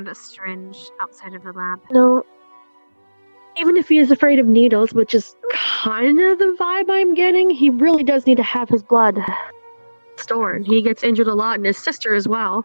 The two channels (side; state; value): both; inverted; correlation -1.00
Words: a syringe outside of the lab. No. Even if he is afraid of needles, which is kind of the vibe I'm getting, he really does need to have his blood stored. He gets injured a lot, and his sister as well.